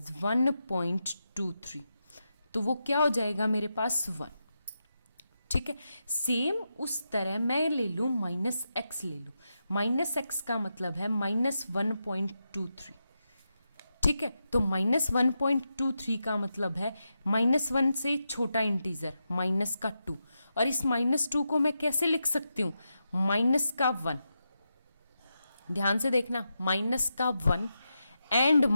1.23, तो वो क्या हो जाएगा मेरे पास 1। ठीक है, सेम उस तरह मैं ले लूँ माइनस एक्स ले लूँ। माइनस एक्स का मतलब है -1.23। ठीक है, तो -1.23 का मतलब है -1 से छोटा इंटीजर माइनस का 2, और इस -2 को मैं कैसे लिख सकती हूँ, माइनस का 1। ध्यान से देखना, माइनस का 1 एंड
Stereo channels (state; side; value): inverted; both; correlation -0.87